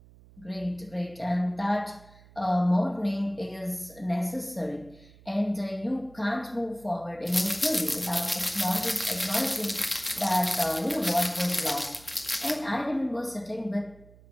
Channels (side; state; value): right; noise; hum, 24 dB below the sound